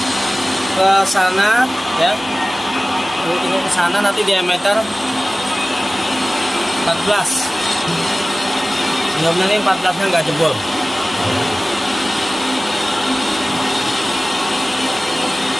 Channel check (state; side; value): normal; both; correlation 0.97